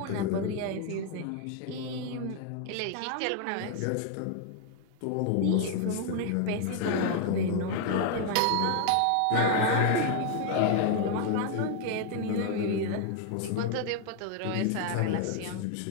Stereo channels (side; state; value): both; different; correlation 0.00